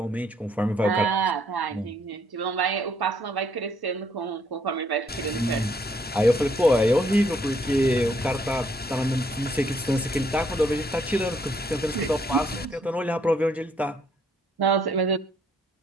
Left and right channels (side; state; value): both; normal; correlation 0.69